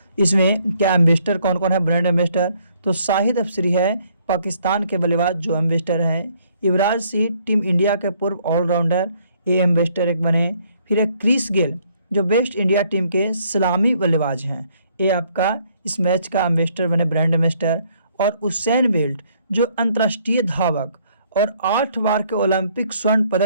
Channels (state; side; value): inverted; both; correlation -0.66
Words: इसमें क्या एम्बेसडर कौन कौन है? ब्रांड एम्बेसडर तो शाहिद अफरीदी है, पाकिस्तान के बल्लेबाज जो एम्बेसडर हैं। युवराज सिंह टीम इंडिया के पूर्व ऑलराउंडर, ये एम्बेसडर एक बने। फिर एक क्रिस गेल जो वेस्ट इंडिया टीम के सलामी बल्लेबाज हैं, ये आपका इस मैच का एम्बेसडर बने, ब्रांड एम्बेसडर। और उसेन बोल्ट जो अंतर्राष्ट्रीय धावक और 8 बार के ओलंपिक स्वर्ण